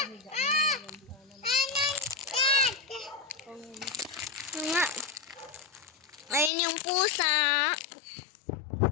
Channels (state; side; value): drops out; right; at 6.5 s